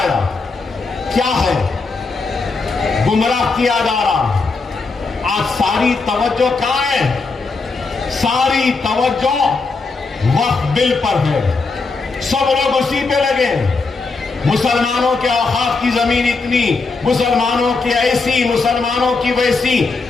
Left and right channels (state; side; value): quieter; right; 4.1 dB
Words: کیا ہے, گمراہ کیا جا رہا ہے. آج ساری توجہ کہاں ہے, ساری توجہ وقت بل پر ہے. سب لوگ اسی پہ لگے. مسلمانوں کے اوقاف کی زمین اتنی, مسلمانوں کی ایسی, مسلمانوں کی ویسی.